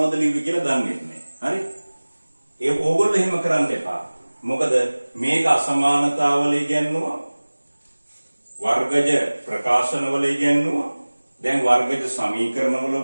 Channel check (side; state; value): both; inverted; correlation -1.00